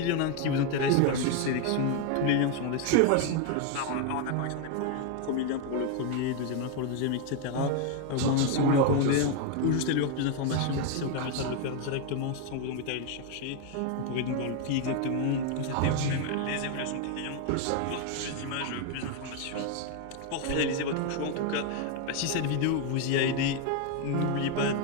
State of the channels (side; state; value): both; different; correlation 0.01